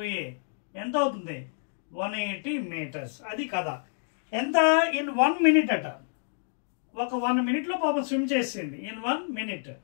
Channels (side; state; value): right; silent; digital silence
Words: A. ఎంత అవుతుంది? 180 meters. అది కదా. ఎంత? ఇన్ 1 minute అట. ఒక 1 minute లో పాపం స్విమ్ చేసింది. ఇన్ 1 minute